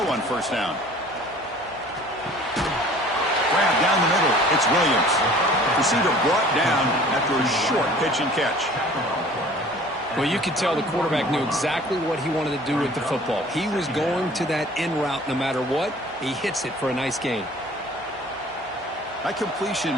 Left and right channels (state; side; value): normal; both; correlation 0.49